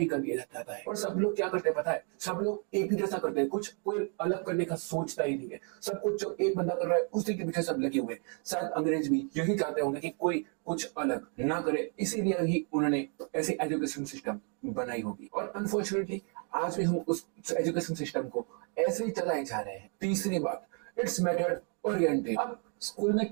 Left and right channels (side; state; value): left; quieter; 39.7 dB